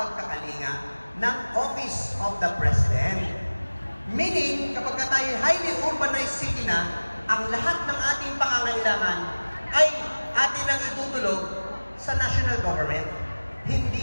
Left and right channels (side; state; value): both; inverted; correlation -1.00